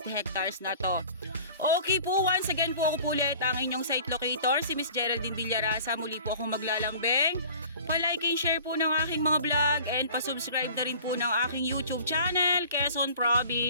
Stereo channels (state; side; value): inverted; both; correlation -0.46